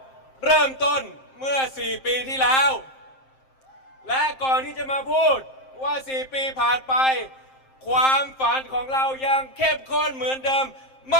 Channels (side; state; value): right; late; 7.6 ms